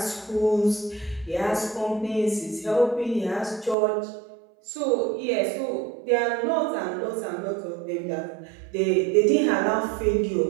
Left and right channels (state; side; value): drops out; left; at 3.8 s